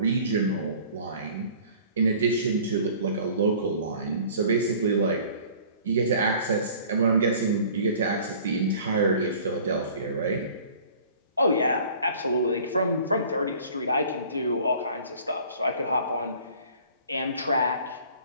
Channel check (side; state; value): both; inverted; correlation -0.49